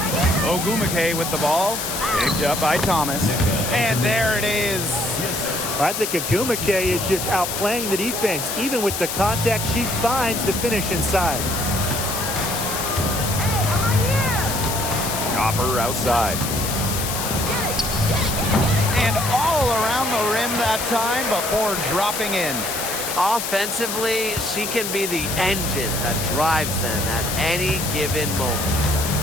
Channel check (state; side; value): noise; left; hiss, 4 dB below the sound